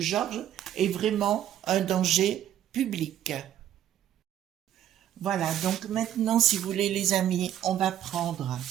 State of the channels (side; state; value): left; quieter; 11.3 dB